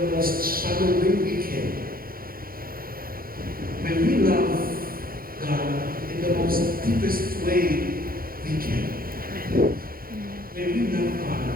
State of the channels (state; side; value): late; left; 0.42 ms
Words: most shallow way we can. May we love God in the most deepest way we can. May we love